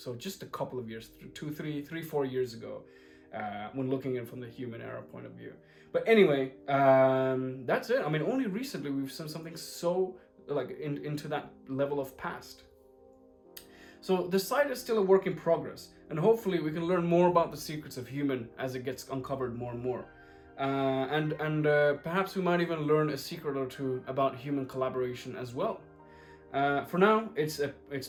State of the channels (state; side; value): identical; both; correlation 1.00